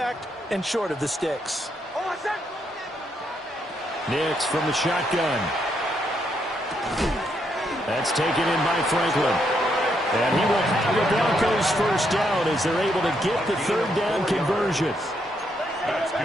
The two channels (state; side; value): normal; both; correlation 0.77